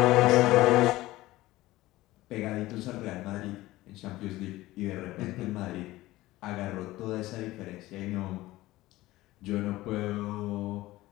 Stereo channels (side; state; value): right; quieter; 17.6 dB